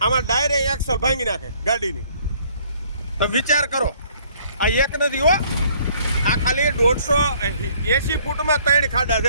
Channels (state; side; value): inverted; both; correlation -0.61